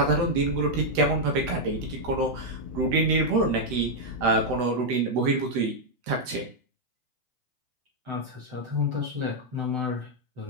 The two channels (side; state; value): left; late; 7.9 ms